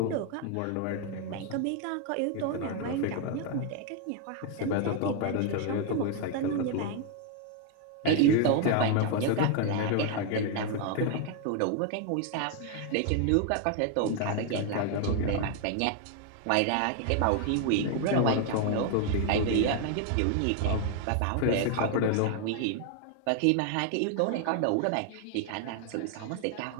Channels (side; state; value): both; different; correlation 0.00